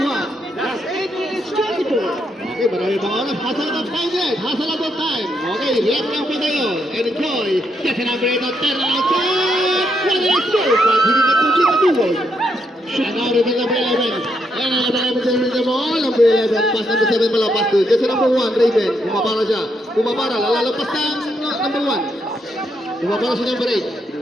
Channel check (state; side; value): normal; both; correlation 0.78